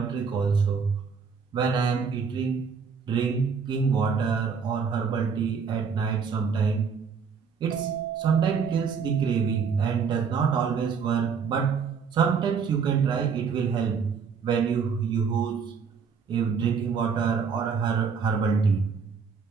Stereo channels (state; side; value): quieter; left; 6.0 dB